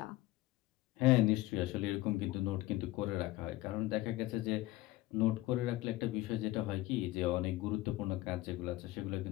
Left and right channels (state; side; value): quieter; right; 17.4 dB